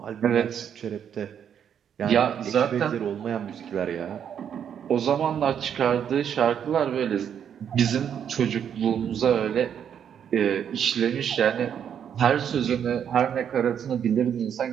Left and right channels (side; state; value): left; quieter; 8.5 dB